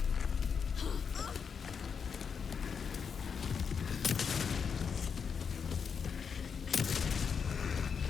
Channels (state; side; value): quieter; right; 6.4 dB